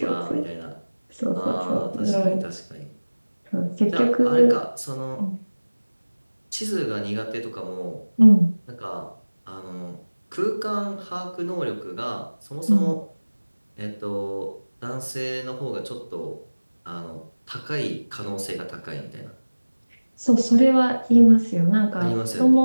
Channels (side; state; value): both; inverted; correlation -1.00